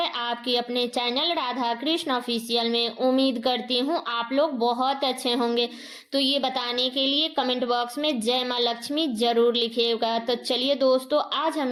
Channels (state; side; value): identical; both; correlation 1.00